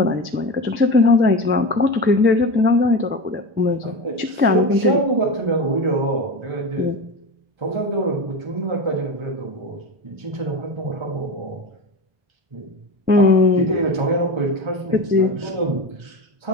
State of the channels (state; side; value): late; left; 1.3 ms